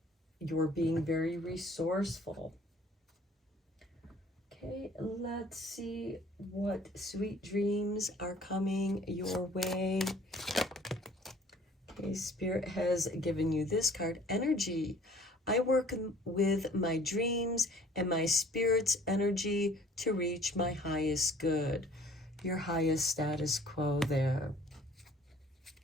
you're being very resourceful. Okay, let's see what sweet dreams are coming your way. Okay, Spirit has given you this card, Energy. I work with my dreams and my spirit's energy to reach my highest good. Your highest status quo there.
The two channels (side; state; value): both; normal; correlation 0.54